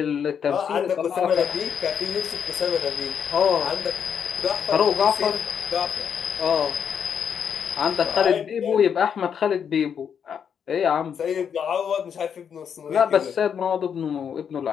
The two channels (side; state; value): right; quieter; 7.6 dB